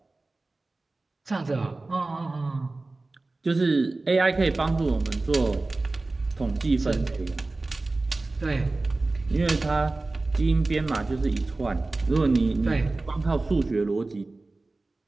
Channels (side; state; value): left; quieter; 3.2 dB